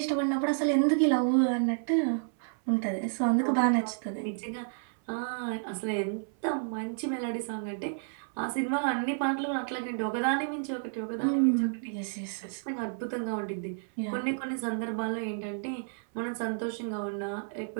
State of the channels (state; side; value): silent; left; 57 dB below the other